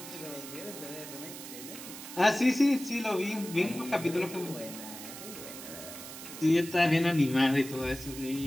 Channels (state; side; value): noise; right; hiss, 12 dB below the sound